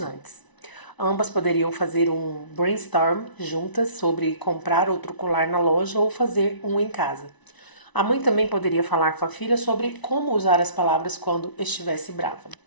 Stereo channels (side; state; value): right; late; 1.0 ms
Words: antes. Ambas poderiam fazer um brainstorm juntas sobre comprar outro colar na loja ou fazer um em casa. A mãe também poderia falar com a filha sobre como usar as palavras quando estivesse brava.